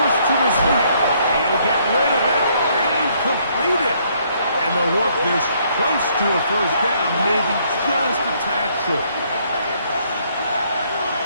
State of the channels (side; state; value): both; inverted; correlation -0.67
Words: to his right. He'll get rid of it and complete it. And they'll work this close to a first down, maybe just a tad short.